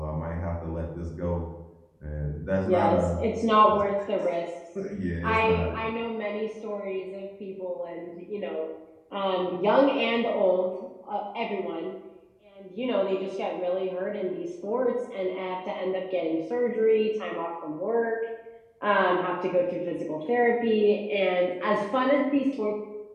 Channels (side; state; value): both; identical; correlation 1.00